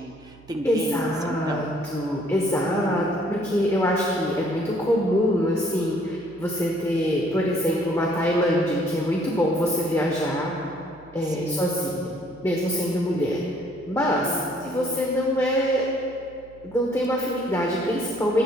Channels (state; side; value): noise; right; hum, 24 dB below the sound